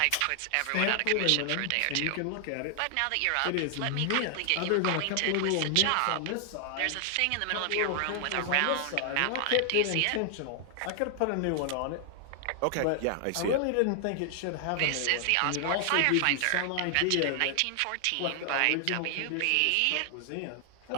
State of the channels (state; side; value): different; both; correlation 0.00